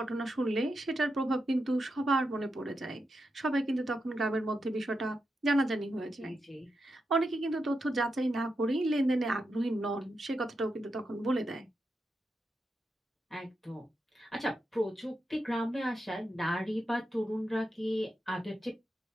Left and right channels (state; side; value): normal; both; correlation 0.86